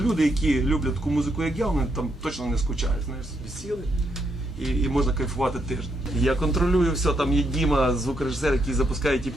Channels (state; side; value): normal; both; correlation 0.78